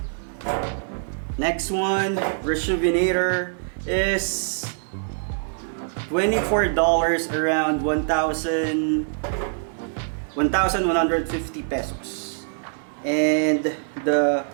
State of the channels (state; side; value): silent; left; 60 dB below the other